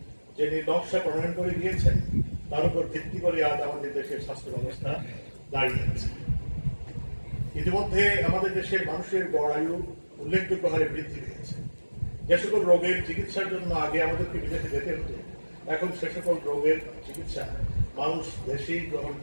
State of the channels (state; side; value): inverted; both; correlation -1.00